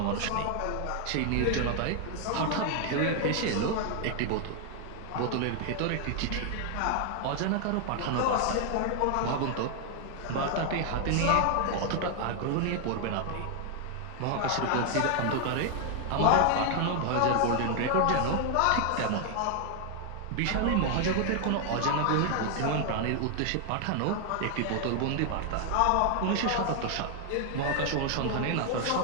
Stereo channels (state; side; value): different; both; correlation 0.00